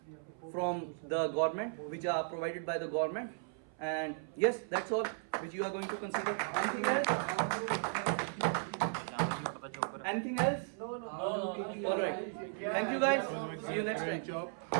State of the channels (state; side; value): silent; left; 54 dB below the other